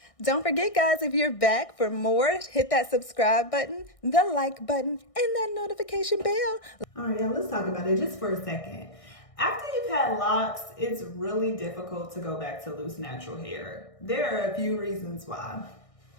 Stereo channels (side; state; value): right; late; 1.6 ms